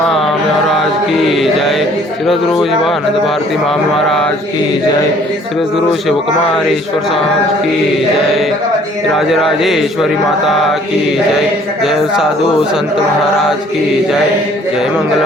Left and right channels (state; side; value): normal; both; correlation 0.57